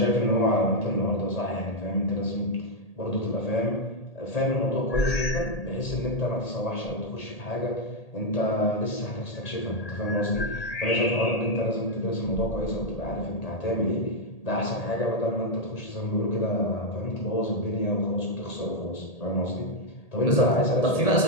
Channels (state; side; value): late; right; 1.8 ms